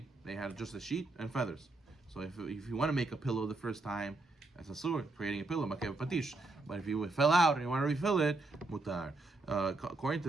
they had just a sheet and feathers. So if you want to make a pillow the first time, that's asur, creating a pillow, Makeh BePatish. But if you fell out and you want to refill it, mutar. According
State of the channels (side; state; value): left; quieter; 3.1 dB